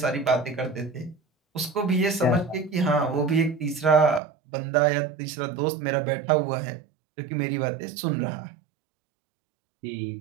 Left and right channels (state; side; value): drops out; left; at 4.2 s